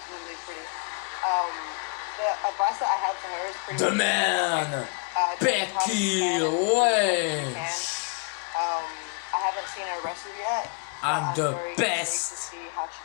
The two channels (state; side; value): quieter; right; 33.6 dB